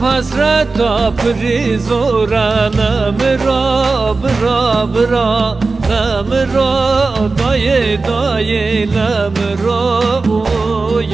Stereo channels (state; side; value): quieter; left; 3.9 dB